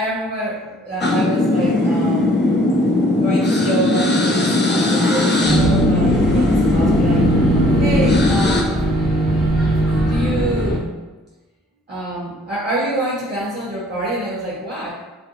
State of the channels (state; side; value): normal; both; correlation 0.59